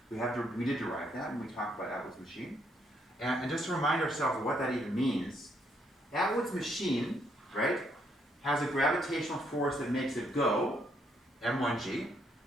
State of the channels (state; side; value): normal; both; correlation 0.72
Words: We did derive that when we talked about Atwood's machine. And just to remind ourselves of what that even means, Atwood's machine, right, has a gravitational force that makes it go, m1g.